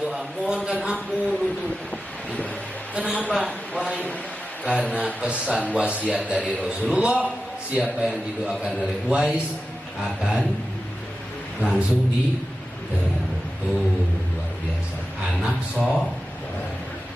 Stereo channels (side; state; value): both; normal; correlation 0.92